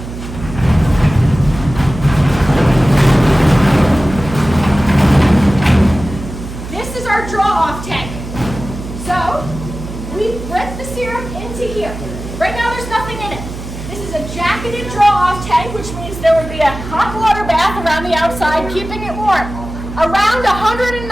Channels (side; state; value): right; noise; hum, 10 dB below the sound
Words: This is our draw-off tank. So we put the syrup into here. Right now there's nothing in it. This is a jacketed draw-off tank, which means there would be a hot water bath around the outside, keeping it warm, around